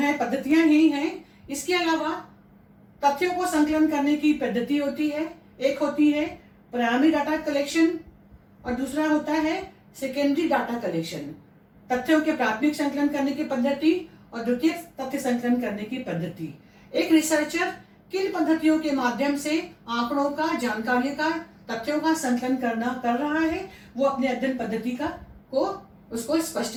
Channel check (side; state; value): both; identical; correlation 1.00